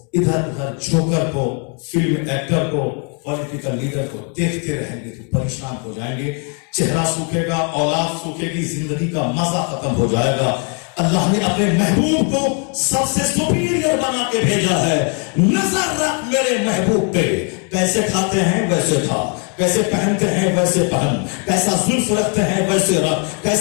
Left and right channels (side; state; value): right; quieter; 37.3 dB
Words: ادھر ادھر جوکر کو, فلم ایکٹر کو, پولیٹیکل لیڈر کو دیکھتے رہیں گے تو پریشان ہو جائیں گے. چہرہ سوکھے گا, اولاد سوکھے گی, زندگی کا مزہ ختم ہو جائے گا. اللہ نے اپنے محبوب کو سب سے سپیریئر بنا کے بھیجا ہے. نظر رکھ میرے محبوب پہ, کیسے کھاتے ہیں ویسے کھا, کیسے پہنتے ہیں ویسے پہن, کیسا زلف رکھتے ہیں ویسے رکھ,